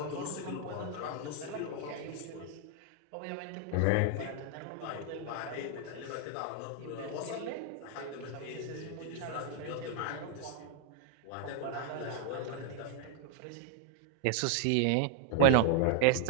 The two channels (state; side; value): different; both; correlation 0.00